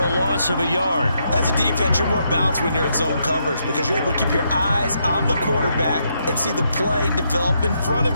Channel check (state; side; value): inverted; both; correlation -0.78